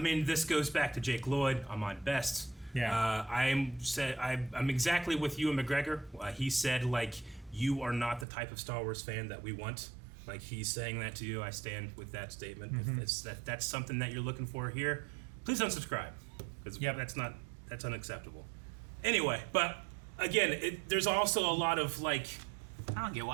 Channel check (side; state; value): left; drops out; at 8.2 s